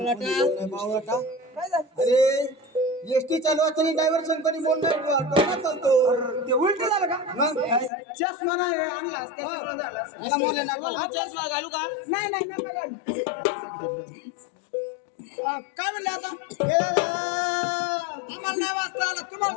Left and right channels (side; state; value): right; drops out; at 7.9 s